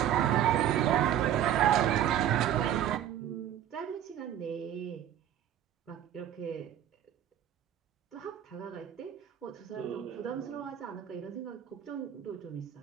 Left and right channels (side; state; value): left; quieter; 10.6 dB